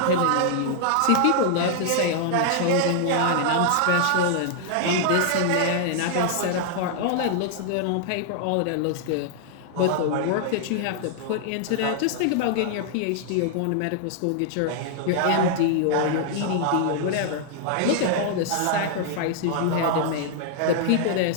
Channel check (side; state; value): both; different; correlation -0.01